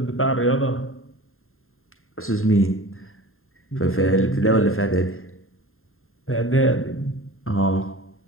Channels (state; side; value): late; right; 0.61 ms